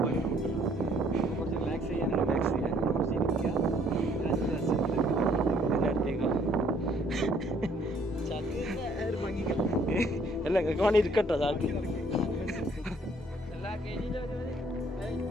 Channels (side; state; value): both; normal; correlation 0.63